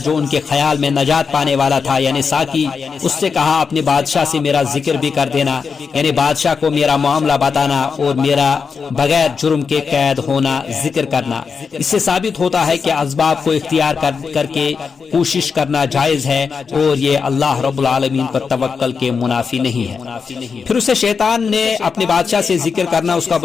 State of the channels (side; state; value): right; quieter; 5.5 dB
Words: جو ان کے خیال میں نجات پانے والا تھا، یعنی ساقی، اس سے کہا اپنے بادشاہ سے میرا ذکر بھی کر دینا، یعنی بادشاہ کو میرا معاملہ بتانا اور میرا بغیر جرم کے قید ہونا ذکر کرنا۔ اس سے ثابت ہوتا ہے کہ اسباب کو اختیار کر کے کوشش کرنا جائز ہے اور یہ اللہ رب العالمین پر توکل کے منافی نہیں ہے۔ پھر اسے شیطان نے اپنے بادشاہ سے ذکر کرنا اس کا